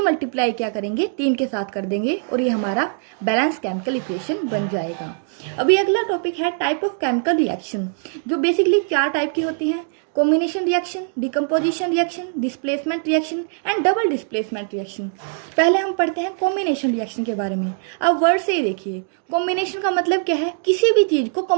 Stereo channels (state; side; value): silent; left; 65 dB below the other